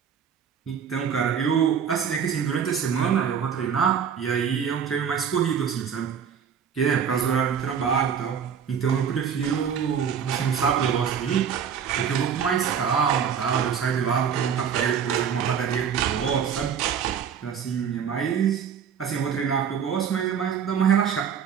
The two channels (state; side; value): quieter; left; 7.6 dB